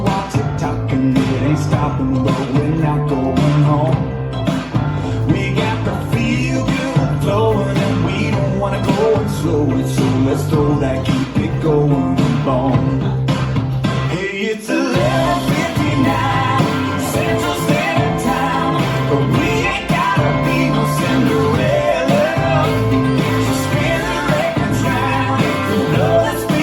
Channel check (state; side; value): identical; both; correlation 1.00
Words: tick-tocking. It ain't stopping, but we're not going home. We got the feel good flowing and we don't wanna go and slow it, so let's throw that keep it going bone. Hey, it's 11:59 Central Standard Time, but we ain't gotta be no Cinderella. So spin the records round, if you blow the